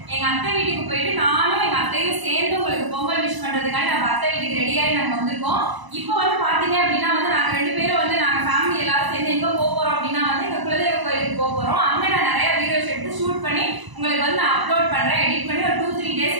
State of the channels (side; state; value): left; late; 1.0 ms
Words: எங்க அத்தை வீட்டுக்கு போயிட்டு நானும் எங்க அத்தையும் சேர்ந்து உங்களுக்கு பொங்கல் விஷ் பண்றதுக்காக நம்ம அத்தை வீட்டுக்கு ரெடியாகி நாங்க வந்திருக்கோம். இப்போ பாத்தீங்க அப்படின்னா நாங்க 2 பேரும் நாங்க ஃபேமிலி எல்லாரும் சேர்ந்து எங்க போறோம் அப்படின்னா எங்க குலதெய்வ கோயிலுக்கு போறோம். அங்க நான் நிறைய வீடியோஸ் எடுத்து ஷூட் பண்ணி உங்களுக்கு நான் அப்லோட் பண்றேன். எடிட் பண்ணி ஒரு 2-3